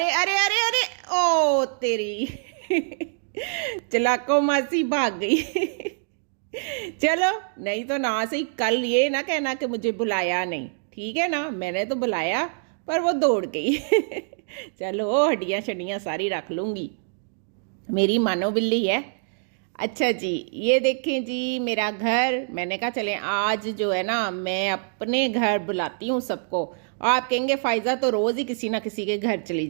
अरे अरे अरे, ओ तेरी चलाको मासी भाग गई। चलो, नहीं तो ना सही, कल ये ना कहना कि मुझे बुलाया नहीं, ठीक है ना? मैंने तो बुलाया पर वो दौड़ गई। चलो, हड्डियाँ शड्डियाँ सारी रख लूँगी। मेरी मानो बिल्ली है। अच्छा जी, ये देखें जी मेरा घर। मैंने कहा चलें आज जो है ना, मैं अपने घर बुलाती हूँ सबको। आप कहेंगे फाइजा तो रोज़ ही किसी ना किसी के घर चली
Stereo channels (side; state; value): left; silent; digital silence